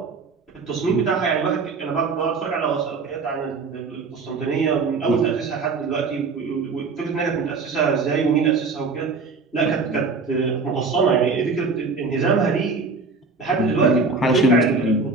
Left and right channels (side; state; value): left; quieter; 4.3 dB